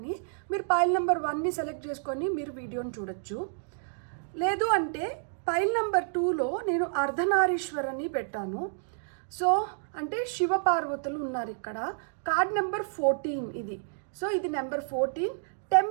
మీరు పైల్ నెంబర్ 1ని సెలెక్ట్ చేసుకొని మీరు వీడియోని చూడొచ్చు. లేదు అంటే పైల్ నెంబర్ 2లో నేను అర్ధనారీశ్వరని పెట్టాను. సో అంటే శివపార్వతులు ఉన్నారు ఇక్కడ. కార్డ్ నెంబర్ 14 ఇది. సో ఇది నెంబర్ 14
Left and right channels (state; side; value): silent; left; digital silence